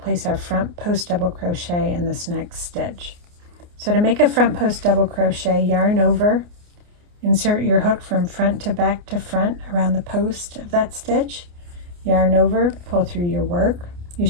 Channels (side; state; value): left; late; 29 ms